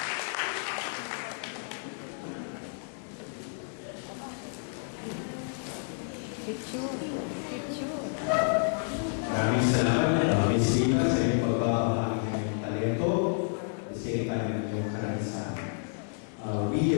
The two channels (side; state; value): right; silent; 58 dB below the other